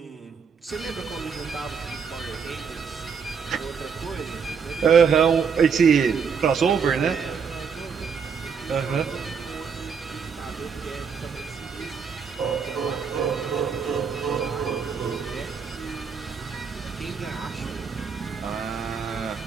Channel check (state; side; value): quieter; left; 6.2 dB